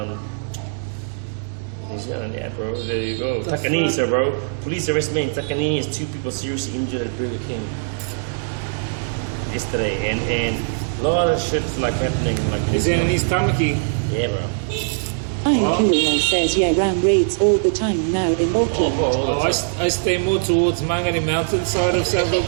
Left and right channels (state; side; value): silent; left; digital silence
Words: New Zealand, yeah, bro. There you go. Takanini, sir, bro. Police arrest me in Takanini as 2 people seriously injured at Burger King yesterday, and a lot of shit's like happening. Like is that in East Tamaki? Yeah, bro. Kirill says, yeah, ram raids all the time now in Auckland. Oh, I stay more towards Mangere Mountain side of South